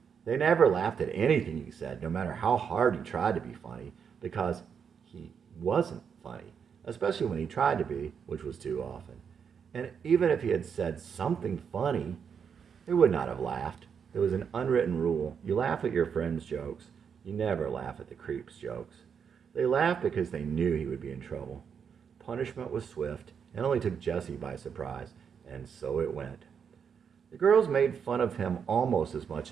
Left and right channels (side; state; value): left; quieter; 7.0 dB